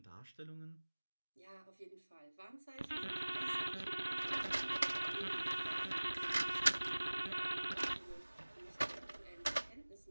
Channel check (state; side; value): inverted; both; correlation -1.00